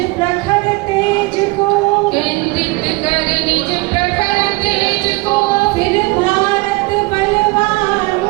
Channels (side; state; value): left; quieter; 24.1 dB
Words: प्रखर तेज को, केंद्रित कर निज प्रखर तेज को। फिर भारत बलवान